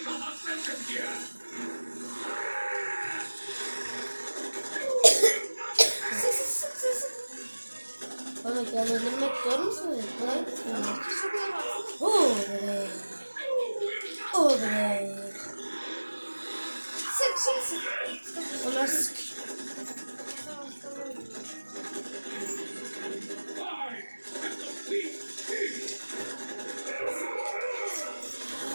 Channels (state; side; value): inverted; both; correlation -1.00